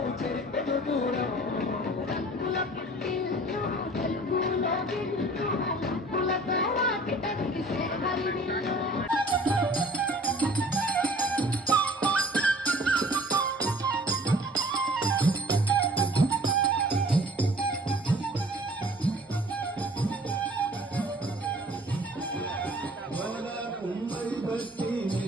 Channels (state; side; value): normal; both; correlation 0.49